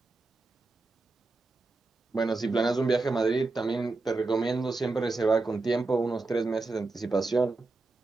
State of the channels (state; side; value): quieter; left; 3.5 dB